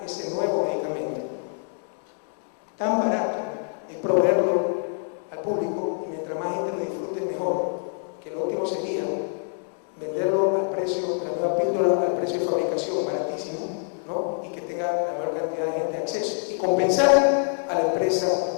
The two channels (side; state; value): right; silent; 61 dB below the other